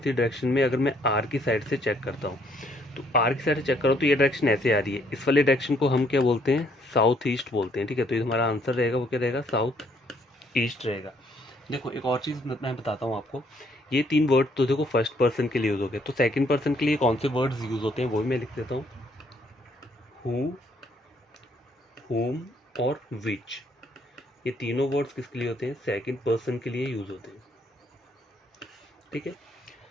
डायरेक्शन में, अगर मैं आर की साइड से चेक करता हूँ तो आर की साइड से चेक करो तो ये डायरेक्शन ऐसे आ रही है, इस वाले डायरेक्शन को हम क्या बोलते हैं, साउथ ईस्ट बोलते हैं, ठीक है। तो ये हमारा आंसर रहेगा, वो क्या रहेगा, साउथ ईस्ट रहेगा। देखो एक और चीज़ मैं बताता हूँ आपको, ये 3 वर्ड तो देखो फर्स्ट पर्सन के लिए यूज़ हो गए, तो सेकंड पर्सन के लिए कौन से वर्ड्स यूज़ होते हैं वो भी मैं लिख देता हूँ, हु, whom और which। ये तीनों वर्ड्स किसके लिए होते हैं, सेकंड पर्सन के लिए यूज़ होते हैं, ठीक है।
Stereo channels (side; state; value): both; normal; correlation 0.67